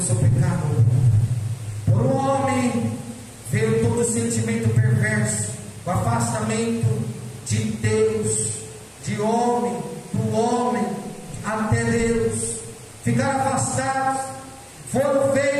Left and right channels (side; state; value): both; identical; correlation 1.00